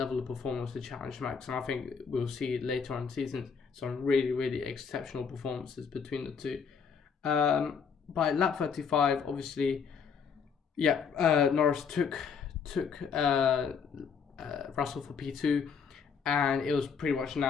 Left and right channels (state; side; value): quieter; right; 6.3 dB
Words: of performance to Challenge Max, and I think we'll see later on in the season some really, really exceptional performances between the two. By lap 35, obviously, Norris took Russell for P2, and it was pretty much